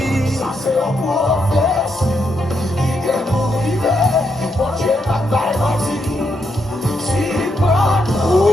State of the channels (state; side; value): normal; both; correlation 0.80